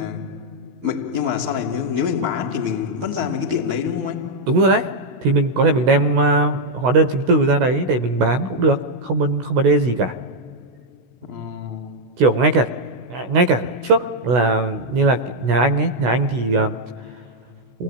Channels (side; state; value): left; late; 16 ms